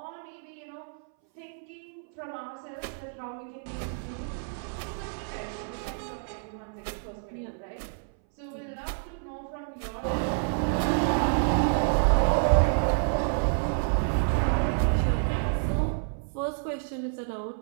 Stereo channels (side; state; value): left; silent; 59 dB below the other